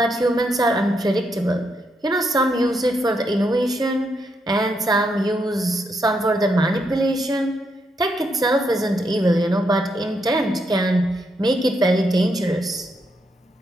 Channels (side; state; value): both; normal; correlation 0.79